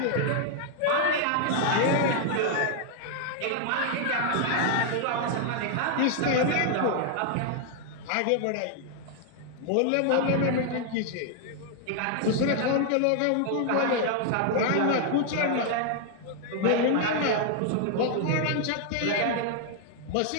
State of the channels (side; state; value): both; different; correlation 0.00